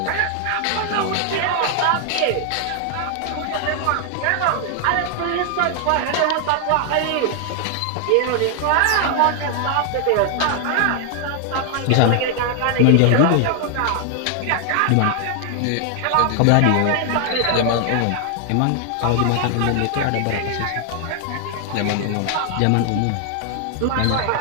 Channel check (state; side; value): different; both; correlation 0.00